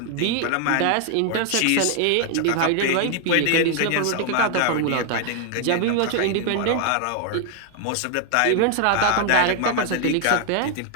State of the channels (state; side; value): different; both; correlation 0.00